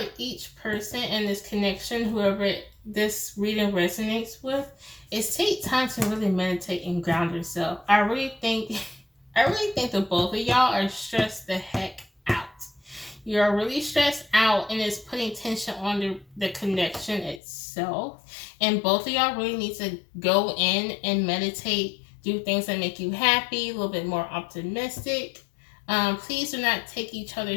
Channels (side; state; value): right; drops out; at 17.4 s